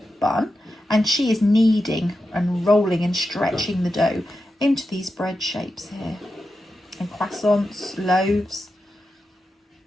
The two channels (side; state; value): both; normal; correlation 0.90